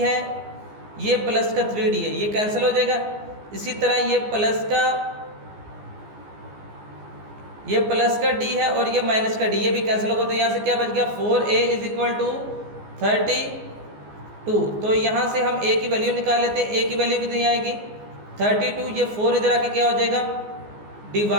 है, ये प्लस का 3d है, ये कैंसिल हो जाएगा। इसी तरह ये प्लस का d है और ये माइनस का d, ये भी कैंसिल होगा। तो यहाँ से क्या बच गया, 4a इज इक्वल टू 32। तो यहाँ से हम a की वैल्यू निकाल लेते हैं। a की वैल्यू कितनी आएगी, 32, ये 4 इधर आके क्या हो जाएगा,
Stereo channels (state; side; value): late; left; 14 ms